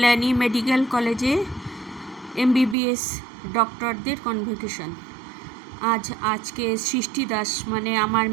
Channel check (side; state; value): left; drops out; at 2.8 s